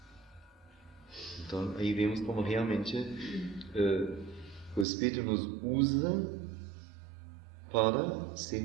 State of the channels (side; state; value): left; drops out; at 4.9 s